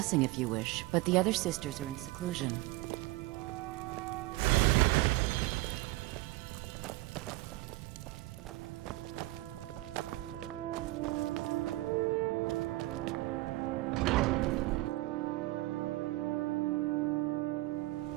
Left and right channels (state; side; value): quieter; left; 19.3 dB